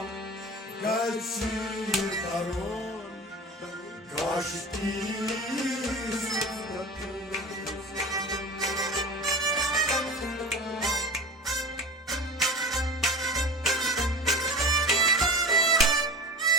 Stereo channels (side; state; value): both; normal; correlation 0.32